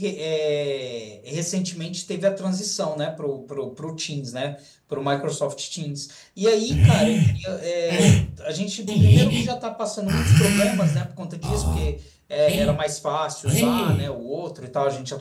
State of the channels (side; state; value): both; identical; correlation 1.00